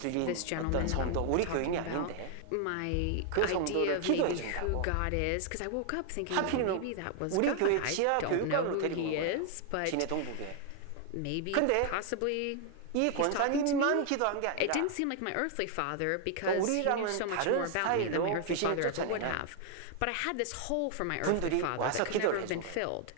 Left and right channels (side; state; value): both; different; correlation 0.00